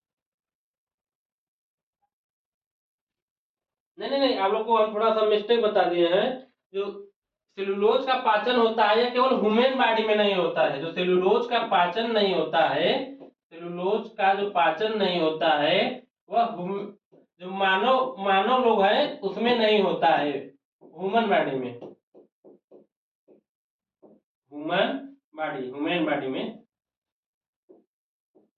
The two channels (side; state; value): both; identical; correlation 1.00